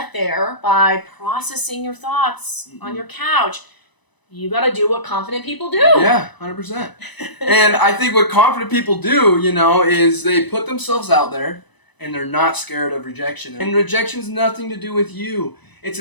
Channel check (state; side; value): late; right; 1.0 ms